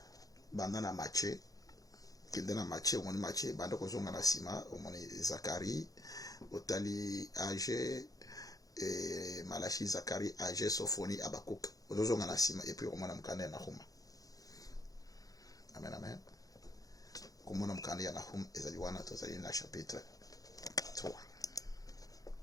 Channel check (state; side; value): late; right; 0.17 ms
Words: banda na Matthieu kende na Matthieu omoni Matthieu banda kozonga na sima omoni Zacharie otali Agé et Malachi Zacharie Agé Sophonie Abakuk ozonga na sima et puis omona mukanda na Nahum. Amen amen. Komona mukanda ya Nahum ezali wana tozali na chapitre 3.